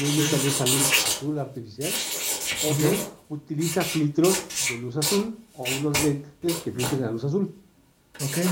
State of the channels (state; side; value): identical; both; correlation 1.00